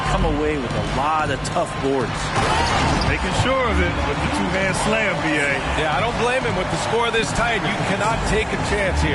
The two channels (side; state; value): both; identical; correlation 1.00